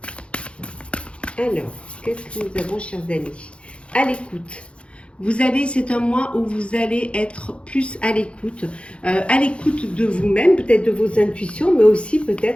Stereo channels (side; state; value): right; late; 0.059 ms